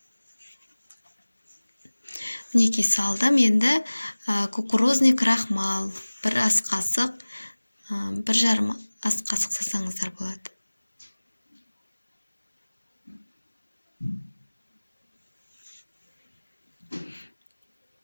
Мінекей салдым. Енді кукурузный крахмал, 1 ас қасық, 1,5 ас қасық салсаңыздар болады.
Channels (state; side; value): inverted; both; correlation -1.00